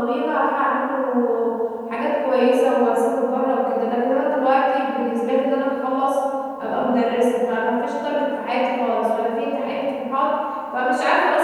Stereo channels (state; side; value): identical; both; correlation 1.00